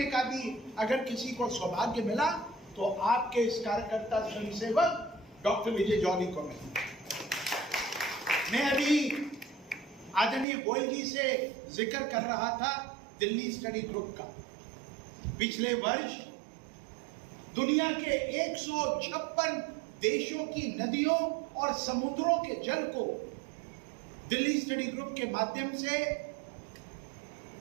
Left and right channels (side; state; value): left; drops out; at 10.5 s